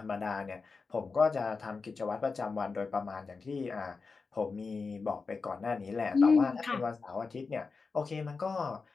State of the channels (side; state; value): right; quieter; 4.5 dB